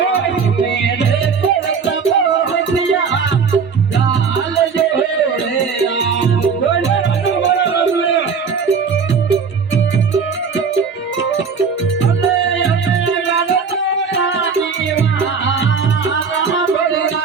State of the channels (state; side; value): quieter; left; 5.7 dB